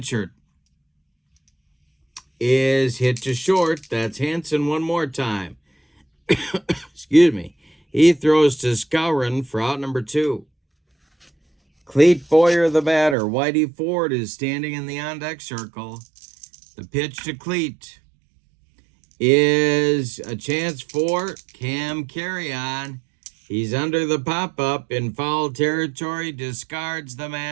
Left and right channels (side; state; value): left; drops out; at 13.2 s